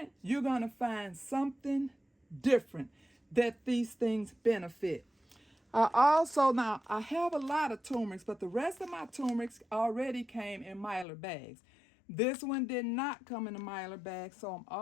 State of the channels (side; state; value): right; drops out; at 11.1 s